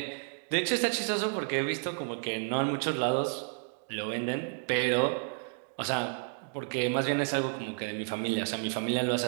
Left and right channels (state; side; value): silent; left; 57 dB below the other